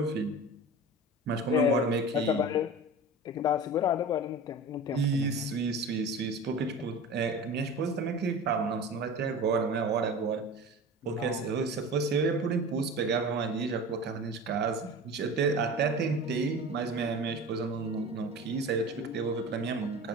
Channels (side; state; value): both; normal; correlation 0.34